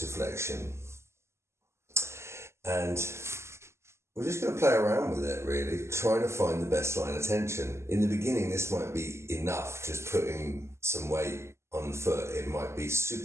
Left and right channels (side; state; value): left; late; 0.13 ms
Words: And we're just going to play around with it, really, trying to find the best line of tension. In the beginning, this might be enough, just putting some weight on the foot. It might be